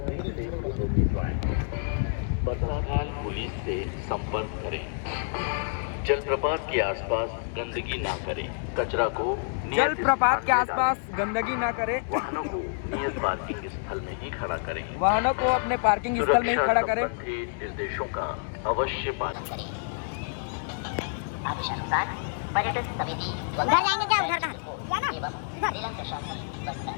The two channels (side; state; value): right; silent; 59 dB below the other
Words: बरसाखाल पुलिस से संपर्क करें। जलप्रपात के आसपास गंदगी ना करें। कचरा को जलप्रपात के आसपास गंदगी ना करें। वाहनों को नियत पार्किंग स्थल में ही खड़ा करें। वाहनों को अपने पार्किंग स्थल में ही खड़ा करें। निर्देशों का अवश्य पालन करें। पर्यटन समिति घर जाएंगे क्या? उधर का एवं जिला प्रशासन बस्तर